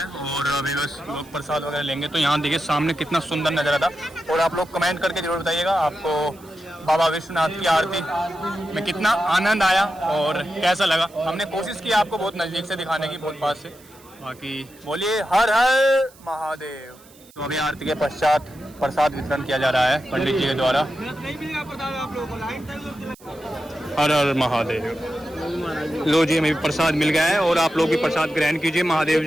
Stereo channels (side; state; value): right; noise; hiss, 25 dB below the sound